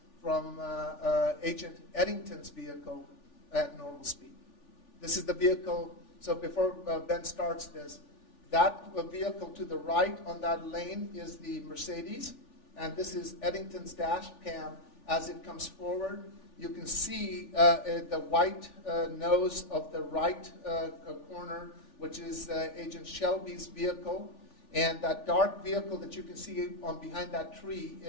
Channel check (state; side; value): late; right; 3.4 ms